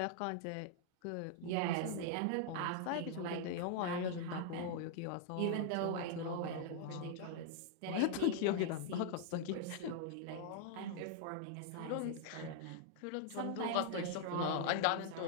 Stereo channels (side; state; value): both; different; correlation -0.01